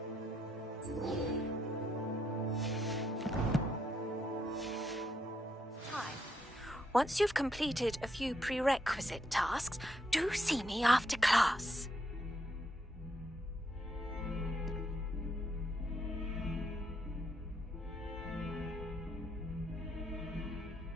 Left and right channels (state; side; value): normal; both; correlation 0.77